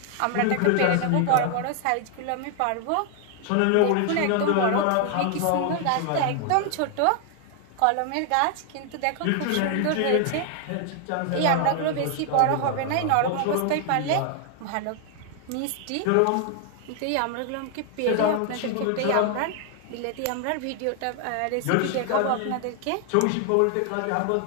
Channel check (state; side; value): different; both; correlation 0.00